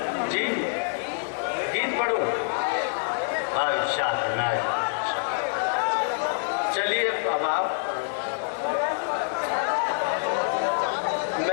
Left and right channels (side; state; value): right; silent; digital silence